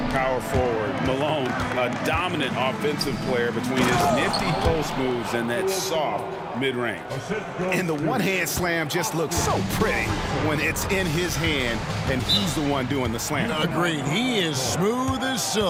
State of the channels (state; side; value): identical; both; correlation 1.00